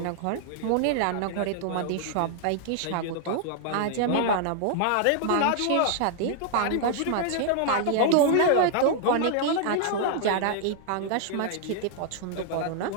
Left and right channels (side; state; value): both; different; correlation 0.00